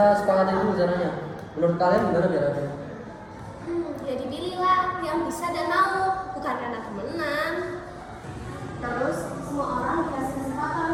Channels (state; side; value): identical; both; correlation 1.00